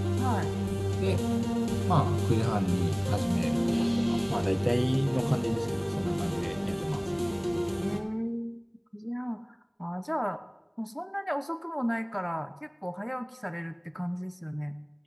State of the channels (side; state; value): both; identical; correlation 1.00